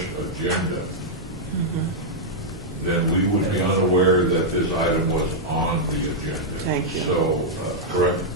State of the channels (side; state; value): both; normal; correlation -0.05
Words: agenda, then we would be unaware that this item was on the agenda. Thank you. So, correct?